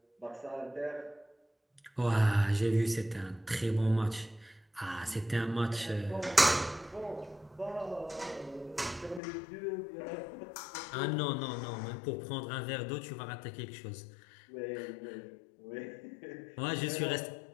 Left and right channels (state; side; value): drops out; right; at 9.2 s